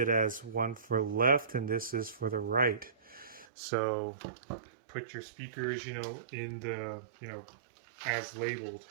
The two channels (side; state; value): left; drops out; at 3.5 s